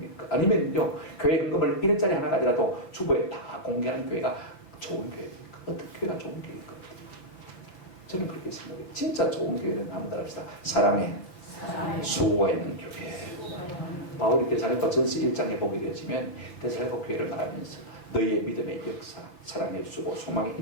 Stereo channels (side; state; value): right; late; 5.8 ms